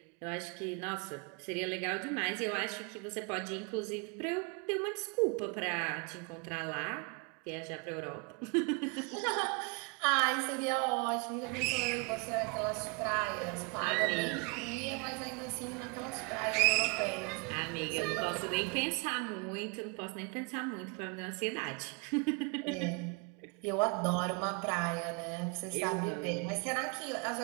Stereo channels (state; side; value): quieter; left; 31.5 dB